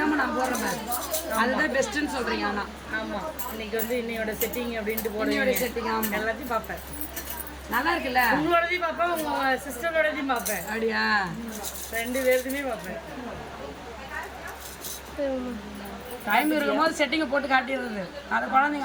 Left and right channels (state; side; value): identical; both; correlation 1.00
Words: நான் போடுறேன். அதுதான் பெஸ்ட்னு சொல்றீங்க. ஆனா ஆமா இன்னைக்கு வந்து இன்னையோட செட்டிங் அப்படின்ட்டு போடுவோட செட்டிங் எல்லாத்தையும் பார்ப்பேன். நல்லா இருக்குல்ல. உங்களோடதையும் பார்ப்பேன், உங்க சிஸ்டரோடதையும் பார்ப்பேன். அப்படியா? 2 பேருக்குமே பார்ப்பேன். டைம் இருக்கும்போது செட்டிங்கை போட்டு காட்டிடுறது. அதை